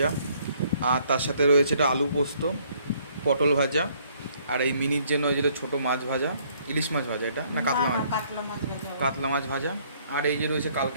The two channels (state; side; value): inverted; both; correlation -0.64